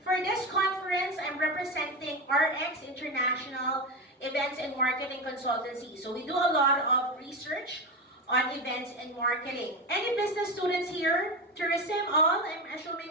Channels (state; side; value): normal; both; correlation 0.19